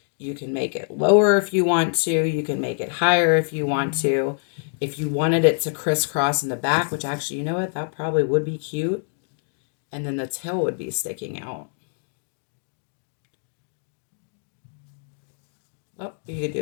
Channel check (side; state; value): right; silent; digital silence